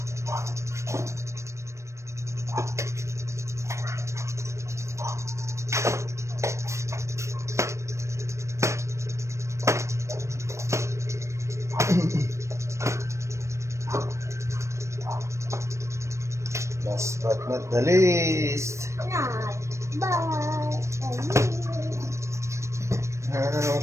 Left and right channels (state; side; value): late; left; 0.14 ms